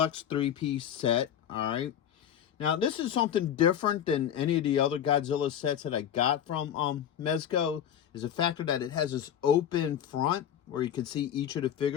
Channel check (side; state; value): right; quieter; 9.6 dB